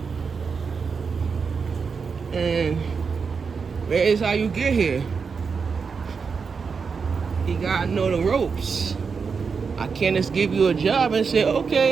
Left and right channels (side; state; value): left; quieter; 5.5 dB